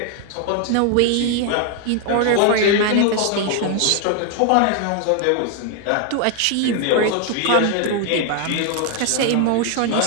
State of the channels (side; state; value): both; different; correlation 0.00